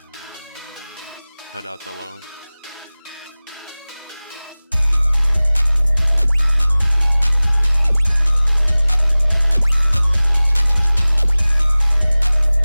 Cut out the low.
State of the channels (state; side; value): inverted; both; correlation -0.99